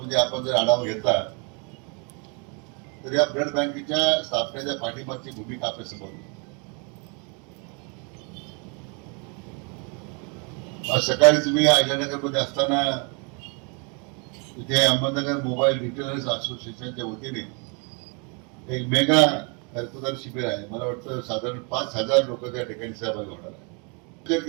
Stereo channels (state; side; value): quieter; left; 34.5 dB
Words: आपण जर आढावा घेतला तर या ब्लड बँकेच्या स्थापनेच्या पाठीमागची भूमिका आपल्या समोर. आज सकाळी तुम्ही अहिल्यानगरमध्ये असताना इथे अहमदनगर मोबाईल रिटेलर्स असोसिएशनच्या वतीने एक मेगा रक्तदान शिबिर आहे. मला वाटतं साधारण 5,000 लोक त्या ठिकाणी सहभागी होणार आहे. विचार